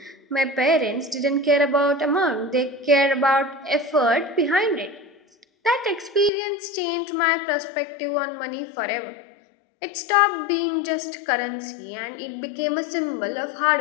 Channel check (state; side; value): drops out; right; at 6.3 s